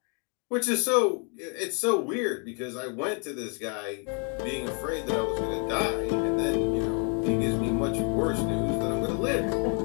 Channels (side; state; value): right; quieter; 37.6 dB